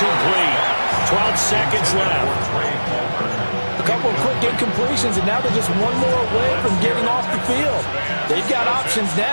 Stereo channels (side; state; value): both; inverted; correlation -1.00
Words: 12 seconds left. A couple of quick incompletions, and now they're just one more away from getting off the field. They've got options